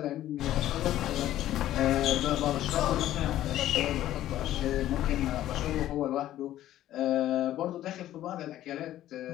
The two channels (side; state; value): right; quieter; 13.3 dB